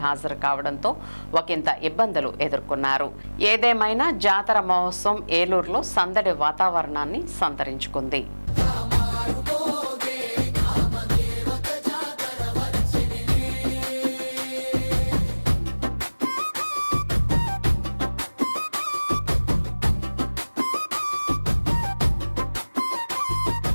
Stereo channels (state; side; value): inverted; both; correlation -1.00